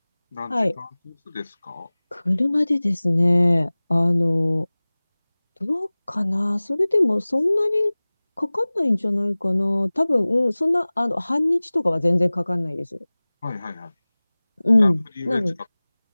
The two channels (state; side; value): inverted; both; correlation -1.00